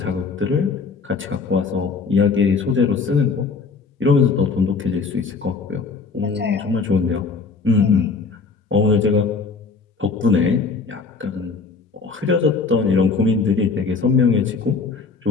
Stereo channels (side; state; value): right; quieter; 4.6 dB